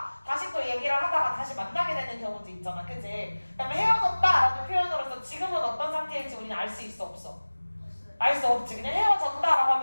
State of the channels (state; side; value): inverted; both; correlation -1.00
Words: 다시 또 얘기를 하다가 다시 만나게 되는 경우도 있잖아. 그치? 그다음에 헤어졌다라는 표현으로서 지금은 어떤 상태일지 우리는 알 수 있어 없어? 알 수 없지. 그냥 헤어졌다라고